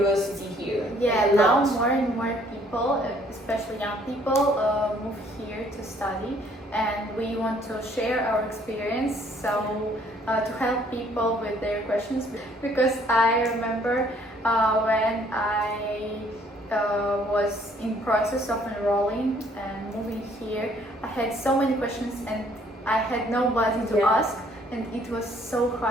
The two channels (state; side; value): normal; both; correlation 0.62